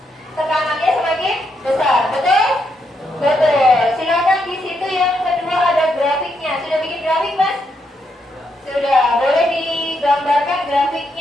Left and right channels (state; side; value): normal; both; correlation 0.79